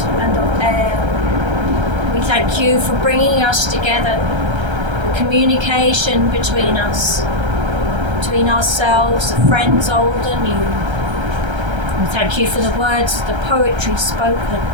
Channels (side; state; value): left; late; 1.3 ms